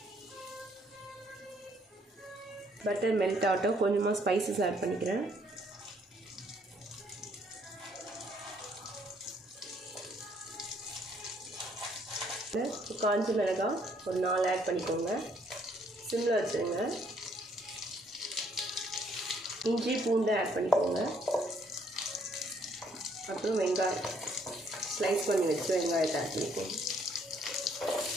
பட்டர் மெல்ட் ஆகட்டும். கொஞ்சமாக ஸ்பைசஸ் ஆட் பண்ணிக்கிறேன். காஞ்ச மிளகாய் ஒரு 4 ஆட் பண்ணிக்கோங்க. சிம்மில் வச்சுருங்க. இஞ்சி பூண்டு ஆட் பண்ணிக்கோங்க. அப்புறம் வெங்காயம் ஸ்லைஸ் பண்ணி வச்சு வெங்காயத்தை ஆட் பண்ணிக்கோங்க.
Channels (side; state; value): both; normal; correlation 0.66